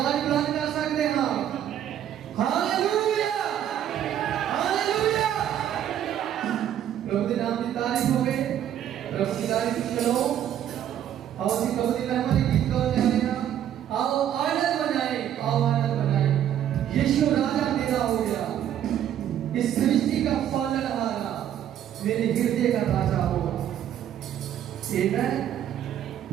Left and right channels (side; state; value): left; quieter; 10.6 dB